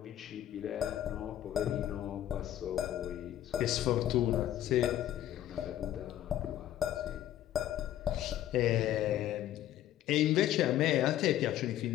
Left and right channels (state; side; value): quieter; right; 12.4 dB